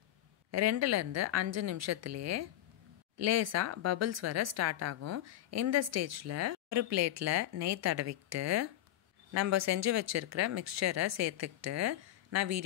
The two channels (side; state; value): right; quieter; 13.4 dB